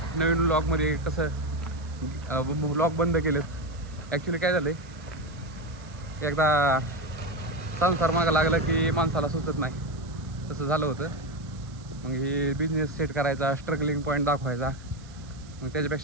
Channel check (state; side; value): noise; right; hiss, 24 dB below the sound